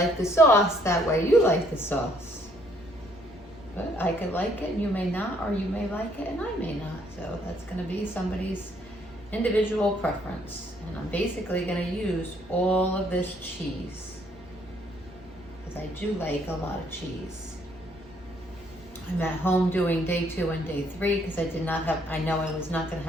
the sauce, that way you like the sauce. But I could like it and you may not, or you may like it and I may not. So that's gonna be somebody's individual preference. And I'm basically gonna use all of this cheese, because I do like a lot of cheese. I'm at home doing day 2 and day 3 because I know I was not gonna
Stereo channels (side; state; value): both; normal; correlation 0.66